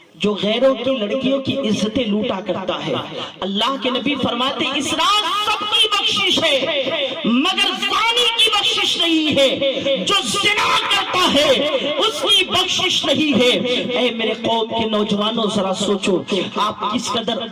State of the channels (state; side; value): identical; both; correlation 1.00